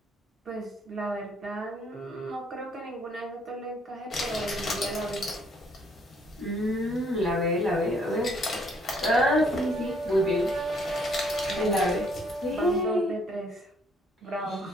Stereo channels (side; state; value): both; normal; correlation 0.66